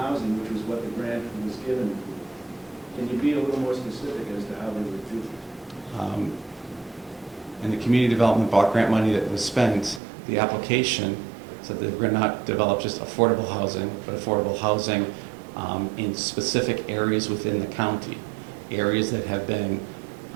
which was what the grant was given for. Can you be a little more specific as to how they were duped? In the community development block grant money that was spent, the application said that we're going to not develop just affordable housing, but affordable housing in specific areas within the county. Areas that have been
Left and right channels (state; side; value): drops out; left; at 10.0 s